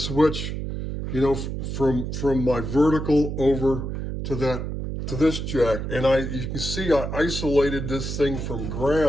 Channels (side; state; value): right; noise; hum, 4 dB below the sound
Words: from my vertical over to this jack. And you can see I isolated this thing from